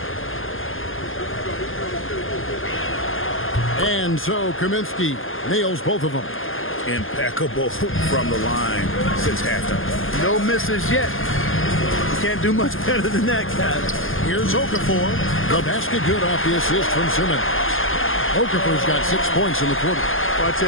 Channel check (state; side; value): late; right; 0.59 ms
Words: And so Kaminsky nails both of them. Impeccable from the line since halftime. No misses yet. You can't do much better than that, guys. Here's Okafor. The basket good off the assist from Simmons. Okafor's got 6 points in the quarter. Well, I